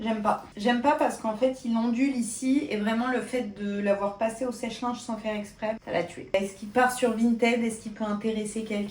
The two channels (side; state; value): both; identical; correlation 1.00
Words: pas. J'aime pas parce qu'en fait, il ondule ici et vraiment le fait de l'avoir passé au sèche-linge sans faire exprès, ça l'a tué. Est-ce qu'il part sur Vinted? Est-ce qu'il peut intéresser